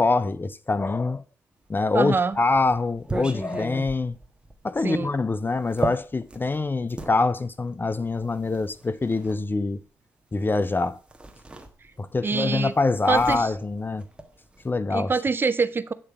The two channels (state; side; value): normal; both; correlation 0.83